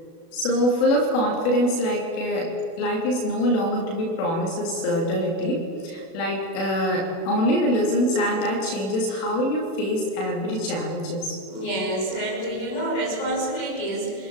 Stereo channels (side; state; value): right; late; 36 ms